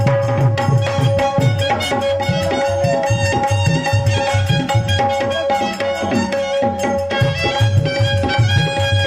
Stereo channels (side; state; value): both; identical; correlation 1.00